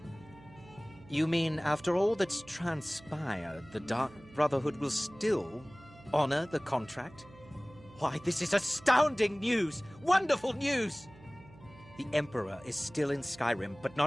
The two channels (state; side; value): noise; right; hum, 22 dB below the sound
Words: You mean after all that's transpired, the Dark Brotherhood will still honor the contract? Why, this is astounding news! Wonderful news! The Emperor is still in Skyrim, but